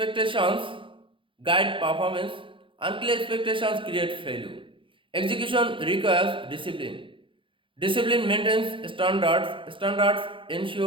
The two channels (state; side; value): late; left; 0.25 ms